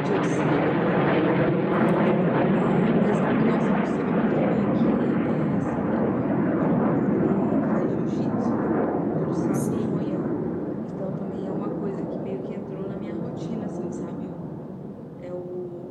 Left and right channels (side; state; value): both; identical; correlation 1.00